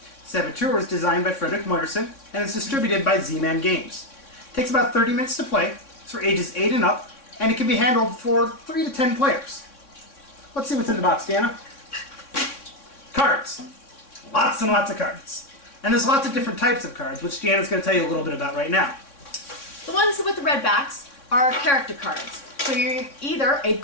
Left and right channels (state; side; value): late; right; 3.6 ms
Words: Saboteur was designed by Frederick Moyerson, and is distributed by Z-Man Games. It takes about 30 minutes to play, it's for ages 8 and up, and it can be handled for 3 to 10 players. Let's see what's in the box, Deanna. Cards. Lots and lots of cards. And there's lots of different types of cards, which Deanna's going to tell you a little bit about right now. The ones with the red backs are character cards. So you're either a